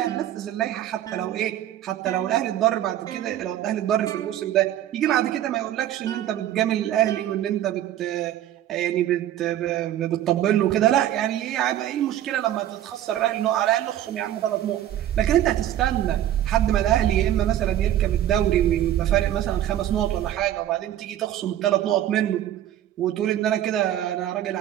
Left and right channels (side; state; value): left; quieter; 12.1 dB